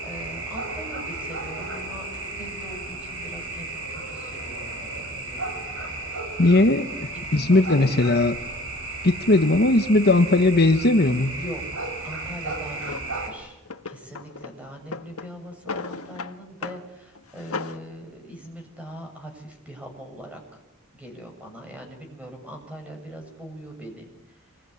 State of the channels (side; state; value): both; normal; correlation 0.50